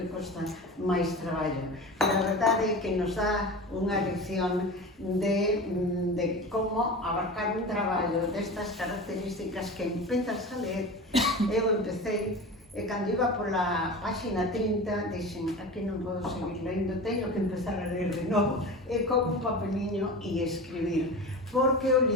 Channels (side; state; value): both; normal; correlation 0.31